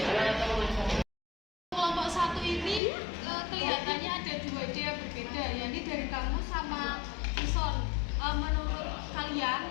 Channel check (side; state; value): right; drops out; at 2.8 s